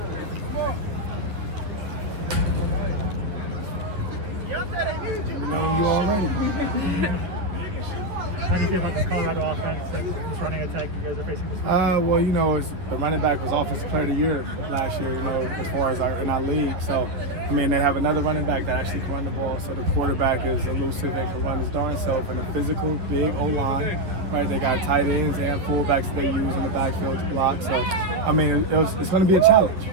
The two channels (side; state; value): left; late; 10 ms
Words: know you already. How do you feel about this Colorado offense and this running attack you guys are facing this week? Well, you know, the running back was Offensive Player of the Year last year, you know, as far as in our league. So, I mean, they have another running back that actually can run the ball. So the quarterback is elusive and can run his darn self. And a physical, big O-line, right? They got tight ends and fullbacks that they use in the backfield to block. So, I mean, it's going to be a challenge.